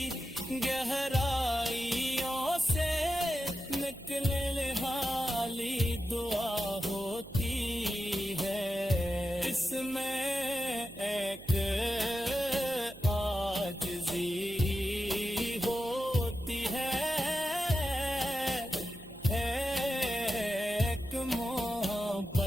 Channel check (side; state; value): right; noise; hum, 18 dB below the sound